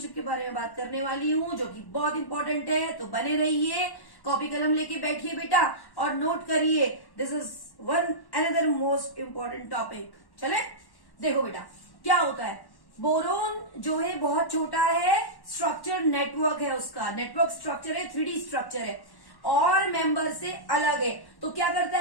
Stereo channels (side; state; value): right; late; 1.1 ms